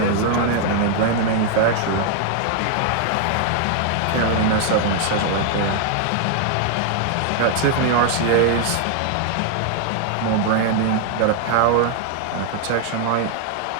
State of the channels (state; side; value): different; both; correlation 0.00